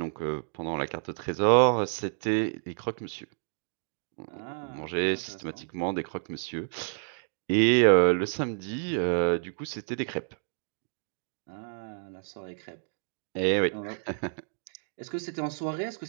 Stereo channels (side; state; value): left; silent; digital silence